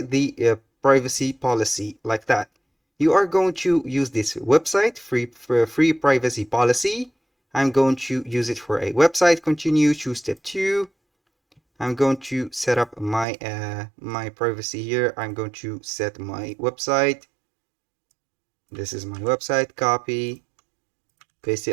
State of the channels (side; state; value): left; drops out; at 13.2 s